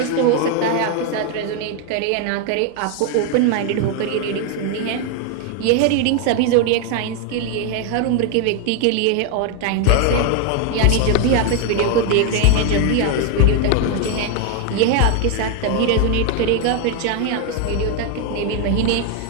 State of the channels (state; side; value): different; both; correlation 0.01